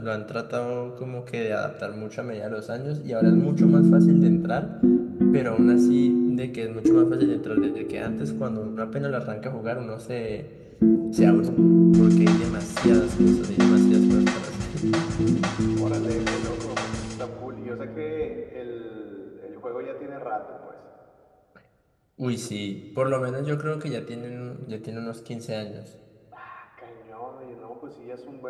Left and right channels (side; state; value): both; identical; correlation 1.00